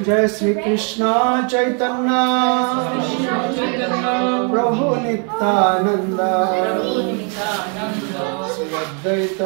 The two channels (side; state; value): left; quieter; 39.6 dB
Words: Jai Sri Krishna Chaitanya Prabhu Nityananda Sri